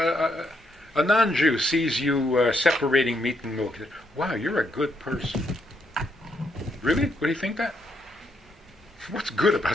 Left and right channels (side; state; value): both; normal; correlation 0.76